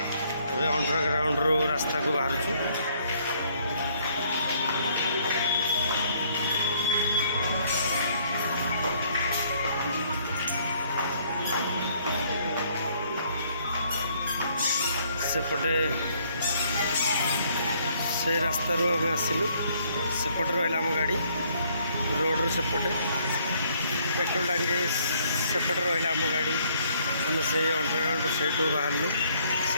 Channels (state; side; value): inverted; both; correlation -0.65